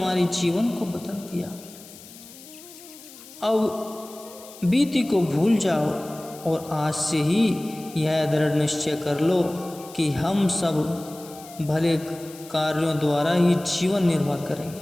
जीवन को बदल दिया। अब बीती को भूल जाओ और आज से ही यह दृढ़ निश्चय कर लो कि हम सब भले कार्यों द्वारा ही जीवन निर्वाह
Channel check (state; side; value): noise; left; hiss, 19 dB below the sound